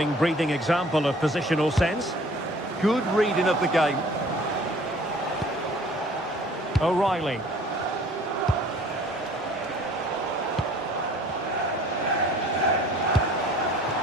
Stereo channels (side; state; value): both; normal; correlation 0.51